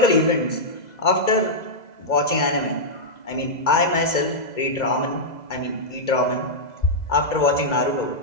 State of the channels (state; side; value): late; right; 2.0 ms